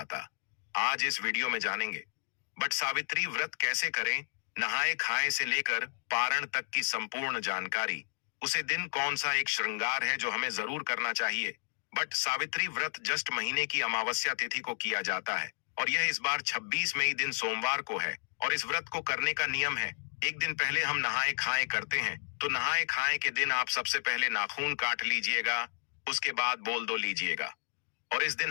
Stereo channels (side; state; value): right; silent; digital silence